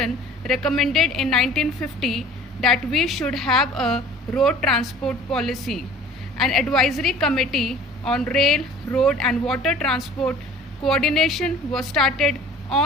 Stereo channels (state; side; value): normal; both; correlation 0.47